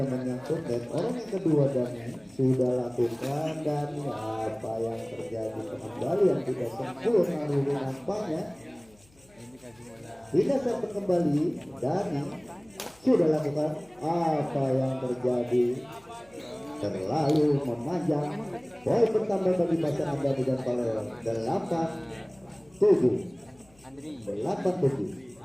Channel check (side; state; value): left; noise; hum, 29 dB below the sound